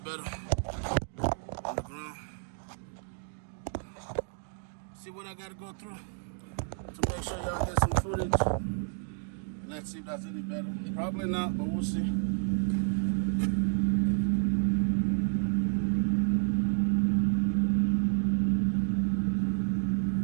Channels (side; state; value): left; silent; 56 dB below the other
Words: on the ground. See what I gotta go through to make sure y'all get some footage. Let's see if that's any better. Probably not, but we'll see.